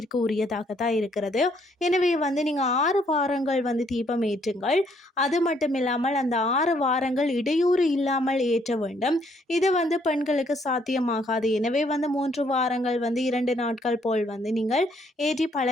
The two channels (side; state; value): both; normal; correlation 0.68